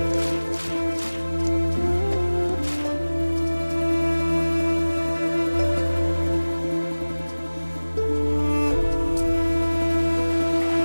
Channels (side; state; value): both; inverted; correlation -1.00